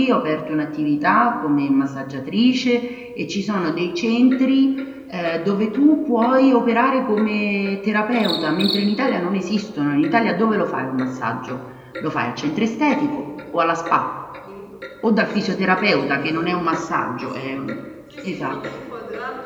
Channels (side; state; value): both; identical; correlation 1.00